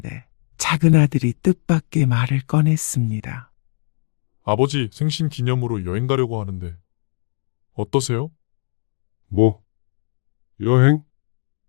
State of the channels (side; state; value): right; quieter; 36.4 dB